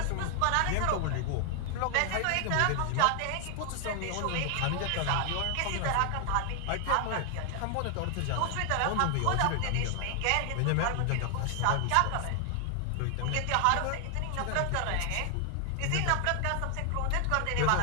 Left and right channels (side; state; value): both; different; correlation 0.00